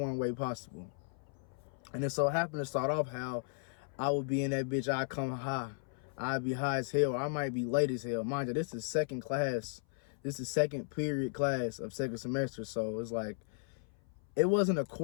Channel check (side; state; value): right; silent; 54 dB below the other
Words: way possible. And it so happened to start off how I would be in that bitch, I'd come high. I'd be high as hell, or I might be late as hell. Mind you, this is second class. This is second period class of second semester. So it's like, it wasn't a